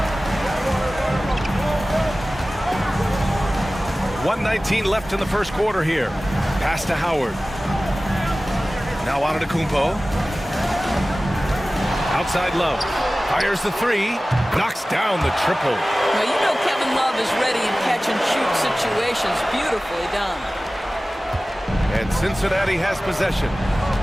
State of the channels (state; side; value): normal; both; correlation 0.97